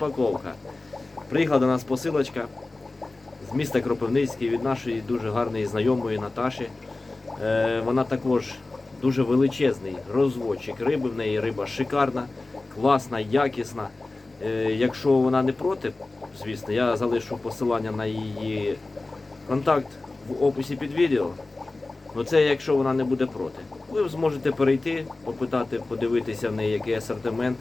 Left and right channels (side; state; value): right; quieter; 3.2 dB